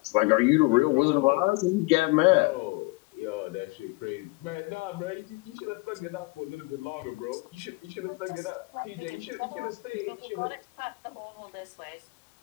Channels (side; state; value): right; quieter; 25.7 dB